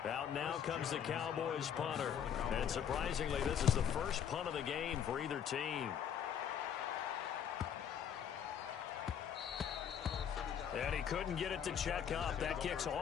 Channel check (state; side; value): quieter; right; 8.5 dB